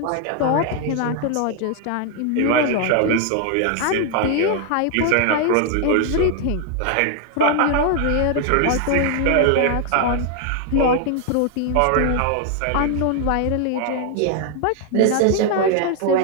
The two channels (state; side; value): different; both; correlation 0.00